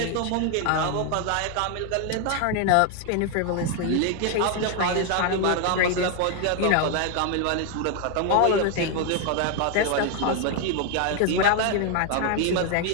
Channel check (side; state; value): both; different; correlation 0.01